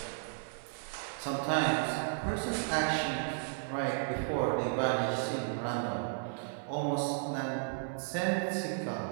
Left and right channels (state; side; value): silent; left; 55 dB below the other